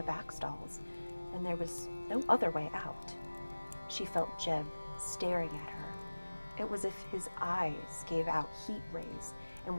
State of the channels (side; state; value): both; inverted; correlation -1.00